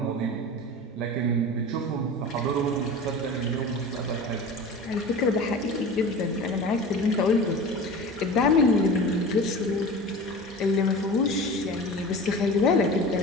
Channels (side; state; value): both; normal; correlation 0.34